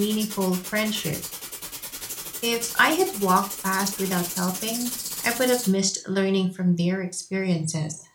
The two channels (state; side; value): identical; both; correlation 1.00